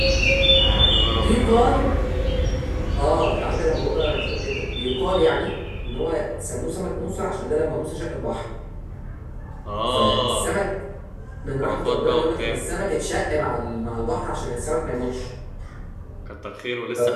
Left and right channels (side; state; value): both; identical; correlation 1.00